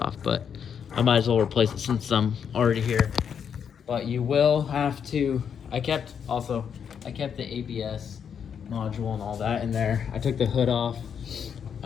but I might as well replace it since I'm already here. But you will have to, I kept the ABS module and all that in there. I took the hood off.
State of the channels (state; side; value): quieter; right; 7.5 dB